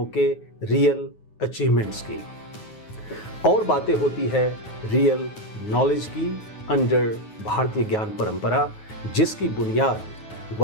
के, रियल अचीवमेंट्स की, और बातें होती है रियल नॉलेज की अंडर भारतीय ज्ञान परंपरा, जिसकी बुनियाद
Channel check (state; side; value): late; right; 9.4 ms